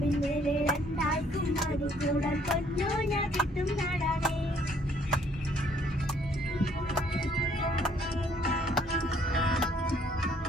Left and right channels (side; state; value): both; normal; correlation 0.63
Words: രണ്ടാൾക്കും മാടിക്കൂടാൻ പൊന്നൂഞ്ഞാൽ കെട്ടും നാടാണ്.